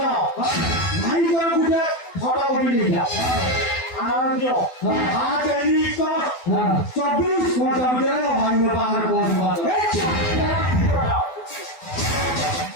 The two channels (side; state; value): right; late; 12 ms